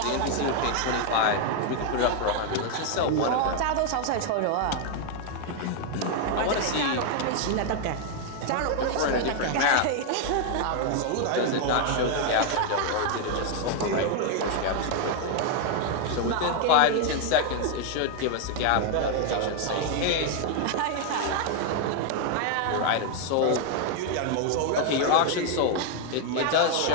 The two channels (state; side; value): different; both; correlation 0.00